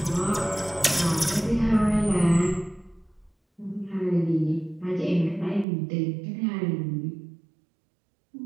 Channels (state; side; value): drops out; left; at 5.7 s